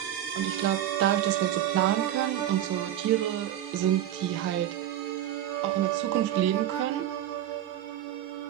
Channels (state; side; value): quieter; left; 11.8 dB